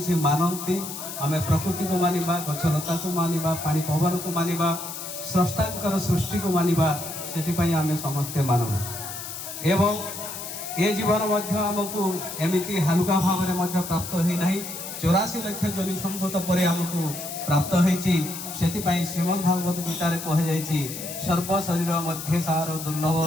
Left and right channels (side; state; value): left; noise; hiss, 8 dB below the sound